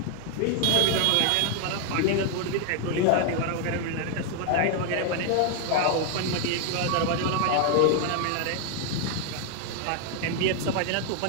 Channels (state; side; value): different; both; correlation 0.00